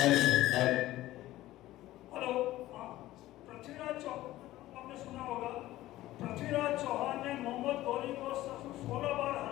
हेलो, पृथ्वीराज चौहान आपने सुना होगा। पृथ्वीराज चौहान ने मोहम्मद गौरी को 16 बार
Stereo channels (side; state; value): right; quieter; 15.8 dB